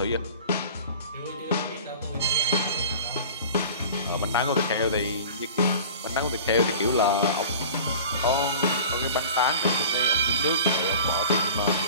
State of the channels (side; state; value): both; inverted; correlation -0.38